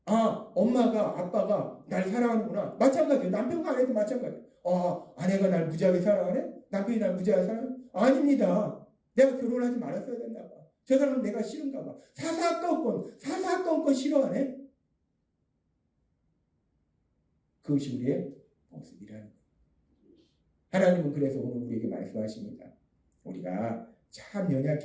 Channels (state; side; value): identical; both; correlation 1.00